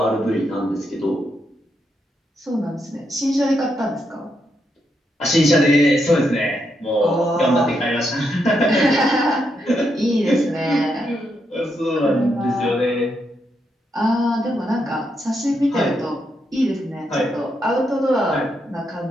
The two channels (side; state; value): both; normal; correlation 0.80